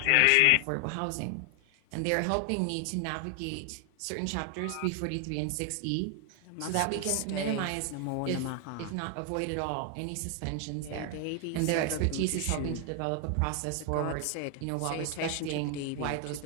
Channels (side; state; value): both; different; correlation 0.00